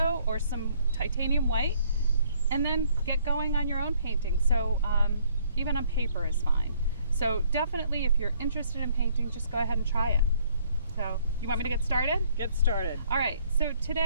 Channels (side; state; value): both; inverted; correlation -0.64